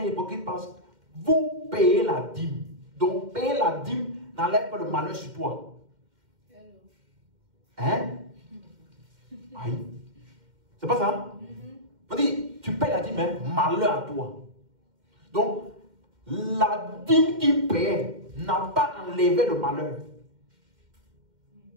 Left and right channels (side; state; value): left; late; 2.1 ms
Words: hypocrites, parce que vous payez la dîme. Donc, payer la dîme n'enlève pas le malheur sur toi. Hein? Aïe. C'est pas ça? On dit, tu payes la dîme, hein? Malheur à toi. Donc, la dîme qu'il paie n'a pas enlevé le malheur.